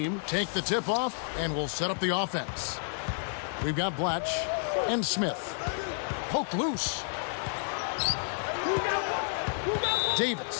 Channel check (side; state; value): right; silent; digital silence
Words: take the tip-off and will set up the offense. We've got Blatch and Smith. Poke loose.